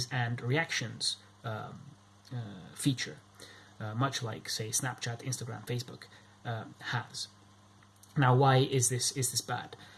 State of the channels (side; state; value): both; identical; correlation 1.00